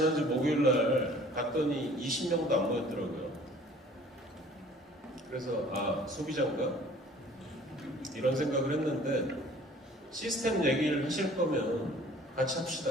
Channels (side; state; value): both; normal; correlation 0.51